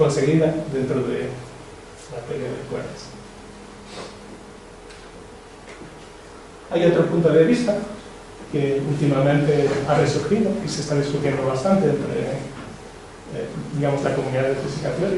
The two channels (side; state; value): both; identical; correlation 1.00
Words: dentro de la teoría de cuerdas. Hay otro punto de vista que últimamente ha resurgido y se está discutiendo bastante entre digamos, la comunidad de física